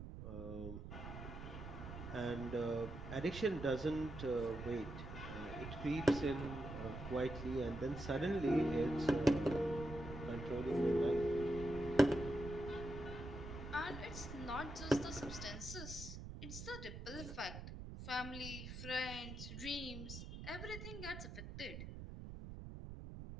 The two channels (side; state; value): right; noise; rumble, 9 dB below the sound